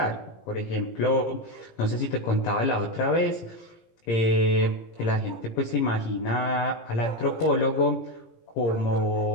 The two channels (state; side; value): late; right; 17 ms